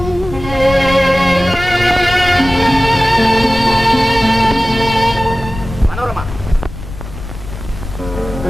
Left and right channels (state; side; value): noise; left; rumble, 11 dB below the sound